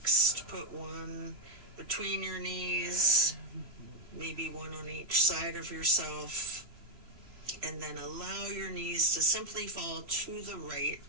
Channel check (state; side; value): late; left; 3.1 ms